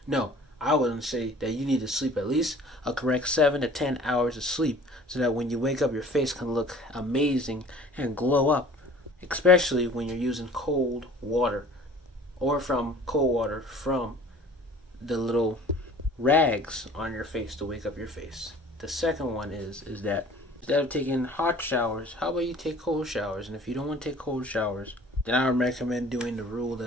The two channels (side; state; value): both; normal; correlation 0.48